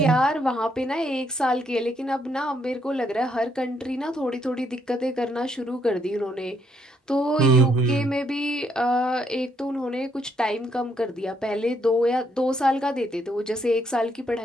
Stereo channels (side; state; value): both; normal; correlation 0.73